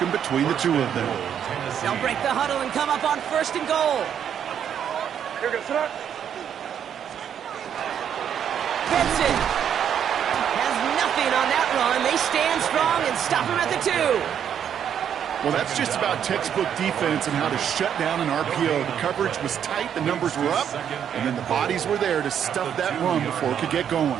between the two of them. They'll break the huddle and come up on 1st and goal. Here goes that. Benson has nothing on that run. They stand strong and stop him at the 2. Well, that's just about textbook defense and how to shut down an RPO. The coverage was tight, the numbers were up, and then the bodies were there to stuff that run before it could get going.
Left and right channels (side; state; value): left; quieter; 8.8 dB